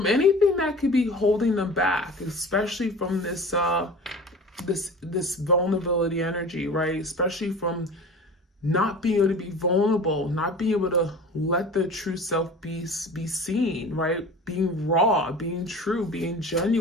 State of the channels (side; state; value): both; normal; correlation 0.38